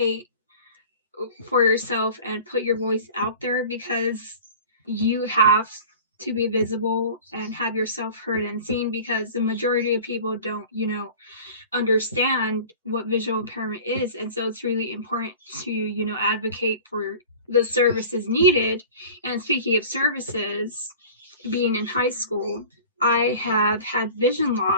for yourself and put your voice out there, because you have to be visible and have yourself heard and seen, because the majority of people don't, understand what visual impairment is. And so it's really important to, advocate for the services needed. And speaking of services, being in high school, I have had vision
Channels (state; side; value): inverted; both; correlation -0.41